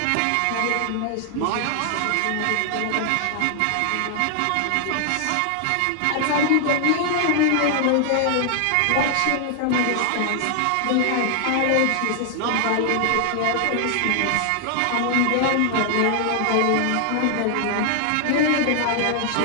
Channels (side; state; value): both; different; correlation 0.00